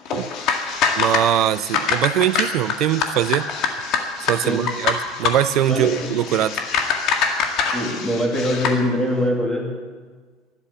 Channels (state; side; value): normal; both; correlation 0.35